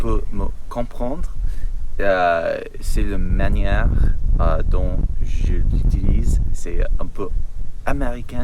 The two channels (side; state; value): both; identical; correlation 1.00